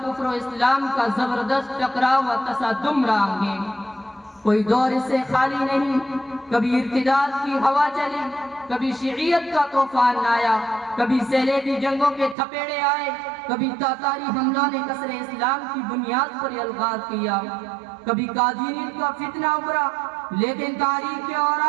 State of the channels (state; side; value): drops out; left; at 12.4 s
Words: کفر و اسلام کا زبردست ٹکراؤ و تصادم رہا ہے. کوئی دور اس سے خالی نہیں. کبھی ارتداد کی ہوا چلی، کبھی شیعیت کا طوفان آیا، کبھی صلیبی جنگوں کے تھپیڑے آئے، کبھی تاتاری حملوں نے کسر اسلام کی بنیاد پر الغار کیا، کبھی قادیانیت کا فتنہ ابھرا. لیکن تاریخ کے